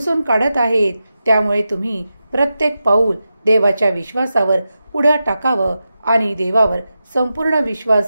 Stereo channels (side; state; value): both; inverted; correlation -0.91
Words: काढत आहेत. त्यामुळे तुम्ही प्रत्येक पाऊल देवाच्या विश्वासावर पुढे टाकावं आणि देवावर संपूर्ण